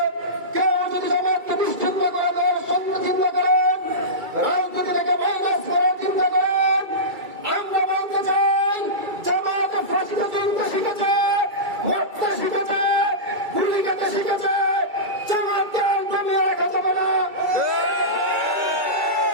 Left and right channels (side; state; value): left; late; 2.3 ms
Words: কেউ যদি জামাতকে নিশ্চিহ্ন করে দেওয়ার চিন্তা করেন, রাজনীতি থেকে মাইনাস করার চিন্তা করেন, আমরা বলতে চাই জামাত ফাঁসিতে চিনতে শিখেছে, মরতে শিখেছে, গুলি খেতে শিখেছে। জামাতকে দমিয়ে রাখা যাবে না।